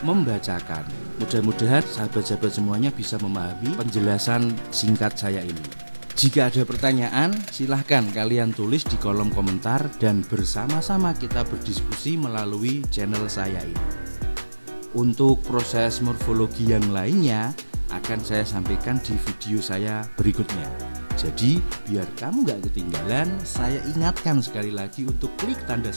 membacakan. Mudah-mudahan sahabat-sahabat semuanya bisa memahami penjelasan singkat saya ini. Jika ada pertanyaan, silahkan kalian tulis di kolom komentar dan bersama-sama kita berdiskusi melalui channel saya ini. Untuk proses morfologi yang lainnya akan saya sampaikan di video saya berikutnya. Jadi biar kamu gak ketinggalan, saya ingatkan sekali lagi untuk klik tanda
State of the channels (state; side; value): inverted; both; correlation -1.00